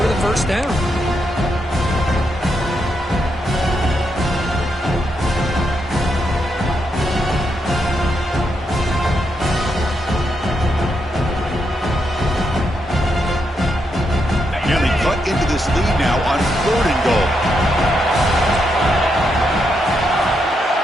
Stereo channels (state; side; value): normal; both; correlation 0.81